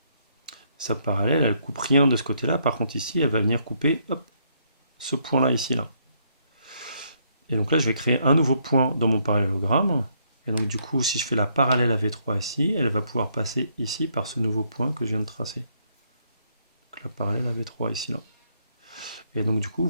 Sa parallèle, elle ne coupe rien de ce côté-là. Par contre, ici, elle va venir couper, hop, ce point-là, ici, là. Et donc là, je vais créer un nouveau point dans mon parallélogramme. Et donc du coup, si je fais la parallèle à V3 ici, elle va pouvoir passer ici par ce nouveau point que je viens de tracer. Donc la parallèle à V3 ici, là. Et donc du coup,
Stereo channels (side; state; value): both; inverted; correlation -0.71